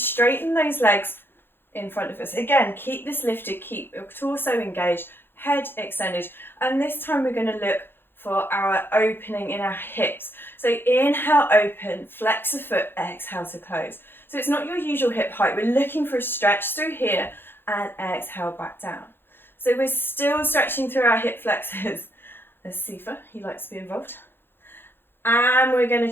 those legs in front of us. Again, keep this lifted, keep your torso engaged, head extended, and this time we're going to look for our opening in our hips. So inhale, open, flex the foot, exhale to close. So it's not your usual hip height. We're looking for a stretch through here and exhale back down. So we're still stretching through our hip flexors. There's Sifa, he likes to be involved. And we're going to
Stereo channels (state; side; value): late; right; 0.10 ms